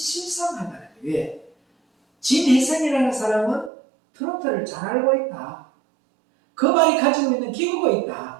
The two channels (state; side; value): drops out; left; at 3.7 s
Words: 거예요. 왜? 진혜성이라는 사람은 트로트를 잘 알고 있다. 그 말이 가지고 있는 기교가